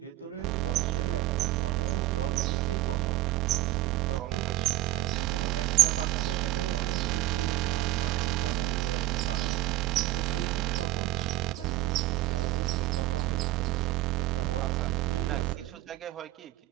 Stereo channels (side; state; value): left; quieter; 15.3 dB